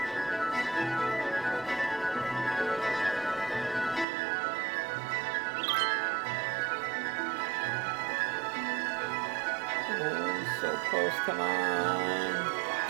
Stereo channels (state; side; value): drops out; left; at 4.0 s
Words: So close, come on.